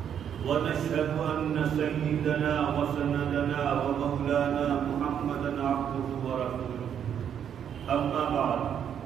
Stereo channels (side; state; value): left; quieter; 8.8 dB